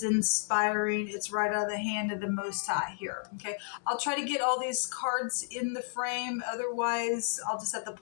inspiring. It's right out of the hand of the Most High here. Okay, I'll try to get all these cards in the frame. Otherwise, I'll just have to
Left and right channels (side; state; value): right; silent; digital silence